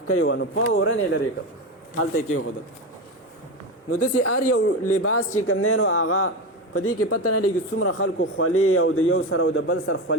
وه، نو فورن یې لرې کړ، هلته یې کېښودل. نو داسې هر یو لباس چې کوم دی نو هغه په دې کې پته نه لګي څومره خلکو خولې او د یو سره او د بل سر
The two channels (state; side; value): normal; both; correlation 0.19